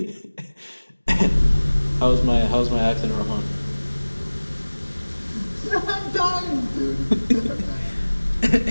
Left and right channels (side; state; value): both; inverted; correlation -1.00